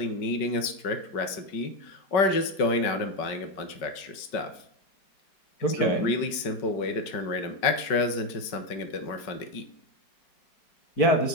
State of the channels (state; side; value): late; right; 5.2 ms